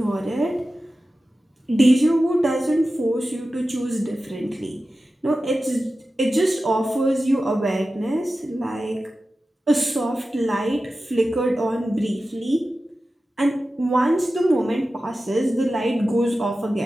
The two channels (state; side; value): normal; both; correlation 0.94